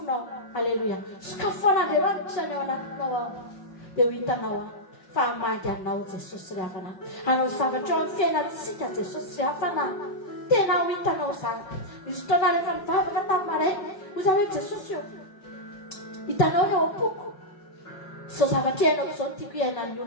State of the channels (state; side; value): late; right; 5.6 ms